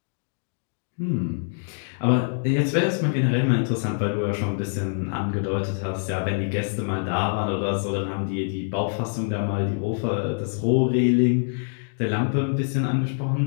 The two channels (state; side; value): silent; right; digital silence